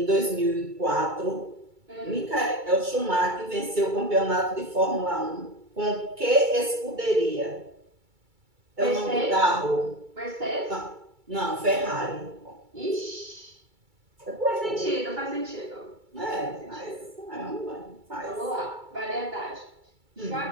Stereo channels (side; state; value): left; late; 2.3 ms